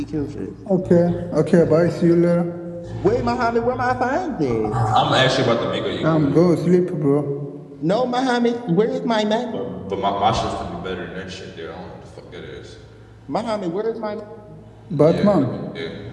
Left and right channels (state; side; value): identical; both; correlation 1.00